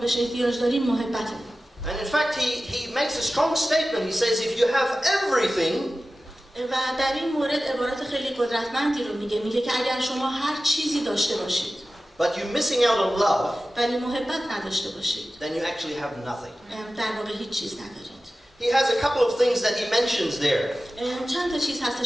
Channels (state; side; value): normal; both; correlation 0.95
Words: احتیاج داریم محبته. And in fact, he makes a strong statement. He says, if you have everything, و در این مورد عبارت خیلی قدرتمندی رو میگه که اگر شما هر چیزی داشته باشید but you're missing out on love, ولی محبت نداشته باشید then you actually have nothing. در واقع هیچ چیز ندارید. He has a couple of things that he mentions there. چند تا چیز